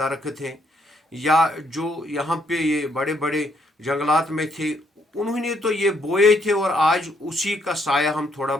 हैं या जो यहाँ पे ये बड़े बड़े जंगलात में थे, उन्होंने तो ये बोए थे और आज उसी का साया हम थोड़ा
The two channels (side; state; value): both; normal; correlation 0.71